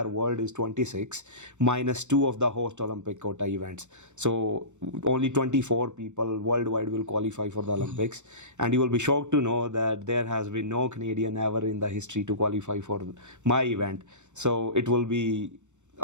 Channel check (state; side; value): late; left; 0.84 ms